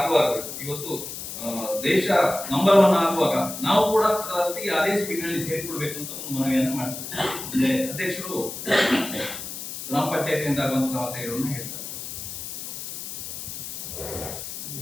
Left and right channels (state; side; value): noise; left; hiss, 8 dB below the sound